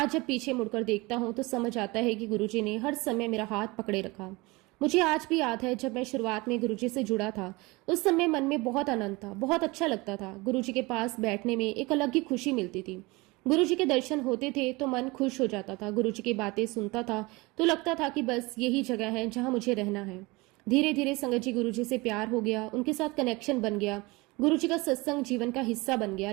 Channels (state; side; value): quieter; left; 23.8 dB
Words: जब पीछे मुड़कर देखता हूं तो समझ आता है कि गुरुजी ने हर समय मेरा हाथ पकड़े रखा। मुझे आज भी याद है जब मैं शुरुआत में गुरुजी से जुड़ा था, उस समय मन में बहुत आनंद था, बहुत अच्छा लगता था। गुरुजी के पास बैठने में एक अलग ही खुशी मिलती थी। गुरुजी के दर्शन होते थे तो मन खुश हो जाता था। गुरुजी की बातें सुनता था तो लगता था कि बस यही जगह है जहां मुझे रहना है। धीरे धीरे संगत जी गुरुजी से प्यार हो गया, उनके साथ कनेक्शन बन गया, गुरुजी का सत्संग जीवन का हिस्सा बन गया।